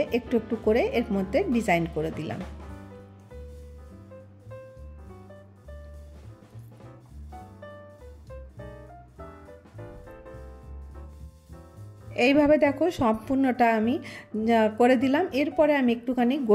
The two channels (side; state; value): both; identical; correlation 1.00